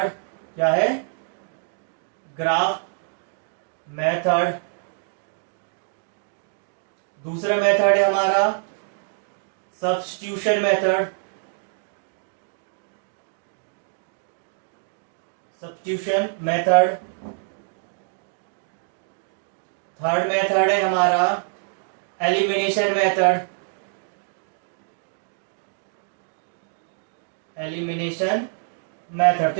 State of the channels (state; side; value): silent; left; digital silence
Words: क्या है? Graph method. दूसरा मेथड है हमारा सब्स्टिट्यूशन मेथड। थर्ड मेथड है हमारा एलिमिनेशन मेथड। तो